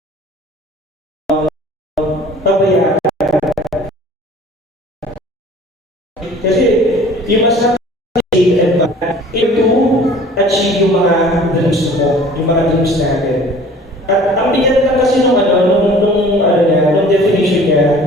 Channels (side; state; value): both; normal; correlation 0.48